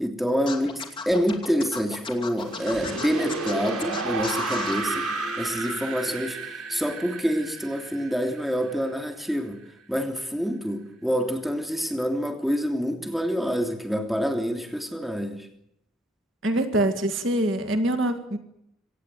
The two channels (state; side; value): normal; both; correlation 0.77